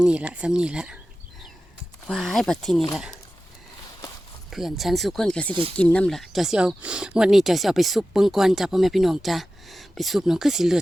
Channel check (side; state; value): both; normal; correlation 0.94